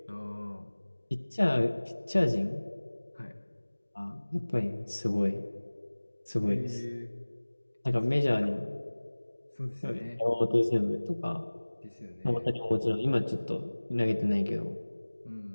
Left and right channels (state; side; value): inverted; both; correlation -1.00